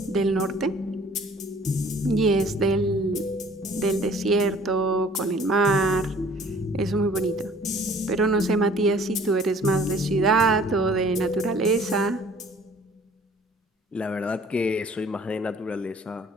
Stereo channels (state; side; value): normal; both; correlation 0.53